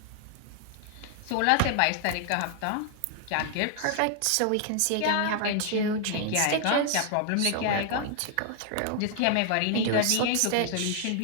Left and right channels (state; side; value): different; both; correlation 0.00